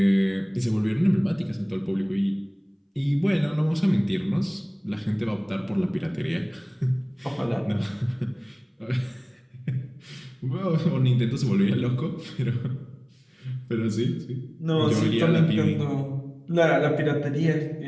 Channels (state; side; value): identical; both; correlation 1.00